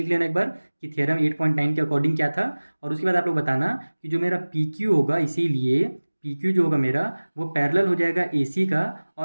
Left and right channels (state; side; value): inverted; both; correlation -1.00